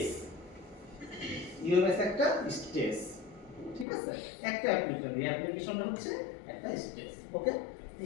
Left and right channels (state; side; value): drops out; right; at 3.9 s